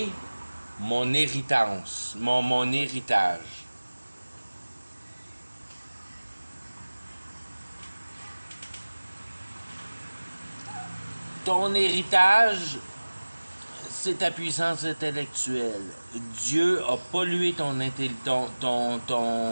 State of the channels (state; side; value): inverted; both; correlation -1.00